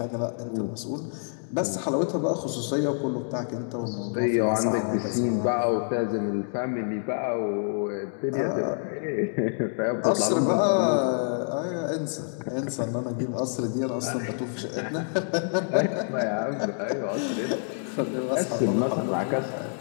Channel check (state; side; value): silent; right; 60 dB below the other